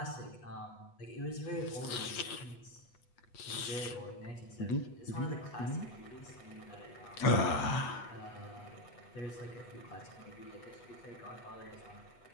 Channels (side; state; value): right; late; 8.2 ms